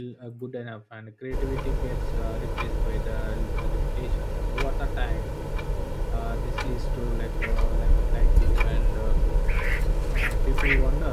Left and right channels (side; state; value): both; identical; correlation 1.00